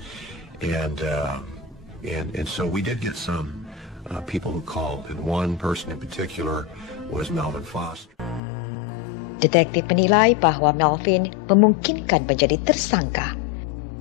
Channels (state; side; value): drops out; right; at 8.4 s